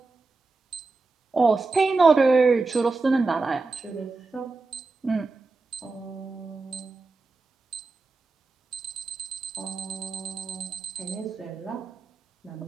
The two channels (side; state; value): left; quieter; 3.8 dB